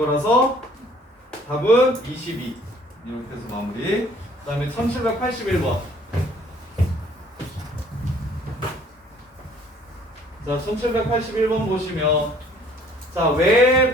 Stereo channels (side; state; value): both; normal; correlation 0.57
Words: 답은 22. 이렇게 해서 마무리. 그 다음에 1781번. 자, 1781번 보시면 자,